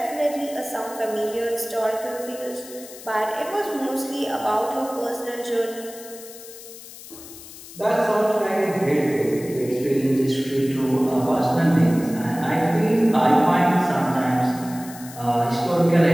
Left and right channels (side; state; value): left; noise; hiss, 16 dB below the sound